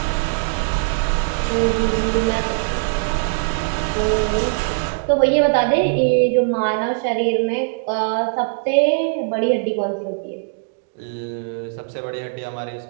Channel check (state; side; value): silent; left; digital silence